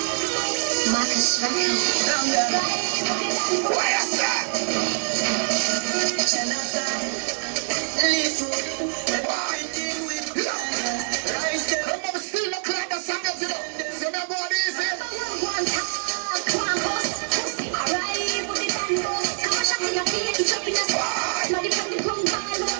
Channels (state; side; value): silent; left; 62 dB below the other